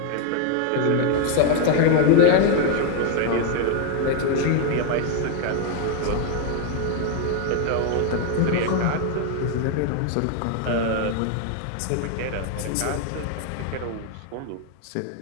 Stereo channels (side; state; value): both; different; correlation 0.01